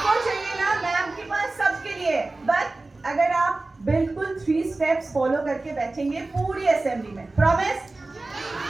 चाहिए ना ma'am के पास सबके लिए but अगर आप बिल्कुल 3 स्टेप्स फॉलो करके बैठेंगे पूरी असेंबली में promise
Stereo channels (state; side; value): quieter; left; 3.2 dB